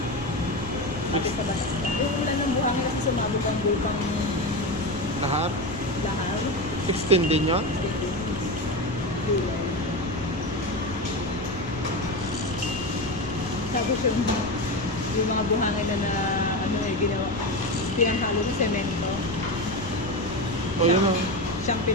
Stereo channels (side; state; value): left; noise; rumble, 12 dB below the sound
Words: Pati sa batas. Yung umulan ng buhangin kasi sumabog ang bukang Lahat? lahar. 16 din yun? Tapos yung mga buhangin na ano ginawa, pinanghalo ng semento. O, yun ang... Siyang